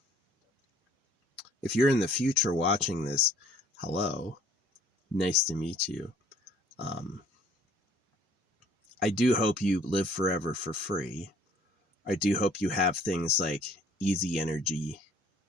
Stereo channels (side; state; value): both; normal; correlation 0.57